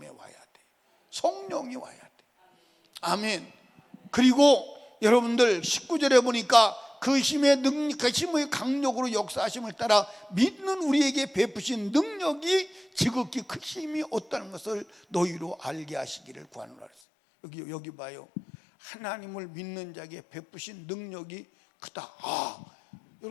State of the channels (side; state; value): right; drops out; at 16.9 s